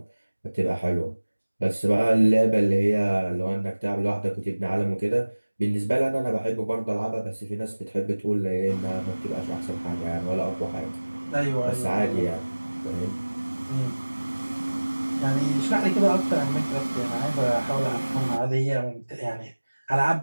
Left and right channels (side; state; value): both; inverted; correlation -1.00